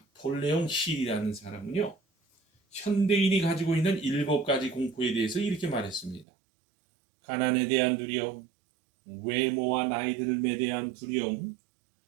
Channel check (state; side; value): drops out; left; at 6.2 s